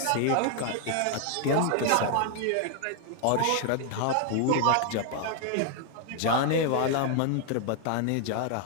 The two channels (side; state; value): both; different; correlation 0.00